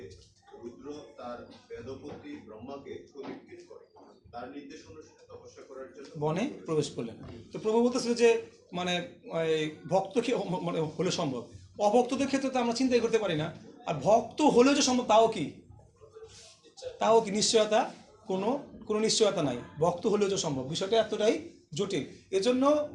রুদ্র তার বেদপতি ব্রহ্মাকে প্রদীক্ষিত করে তার নির্দেশ অনুসারে তপস্যা করার জন্য বনে প্রবেশ করলেন। তো প্রভু বলতেছিল যে মানে ভক্ত কি মানে হলে সম্ভব, অভক্তদের ক্ষেত্রে তো আমরা চিন্তাই করতে পারি না। আর ভক্ত হলেও যে সম্ভব তাও কি নিশ্চয়তা, কোনো নিশ্চয়তা নাই। ভক্ত হলেও যে সম্ভব, বিষয়টা এতটাই জটিল। এজন্য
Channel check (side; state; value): both; identical; correlation 1.00